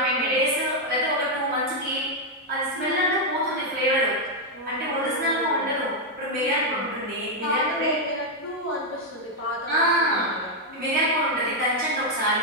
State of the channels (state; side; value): normal; both; correlation 0.01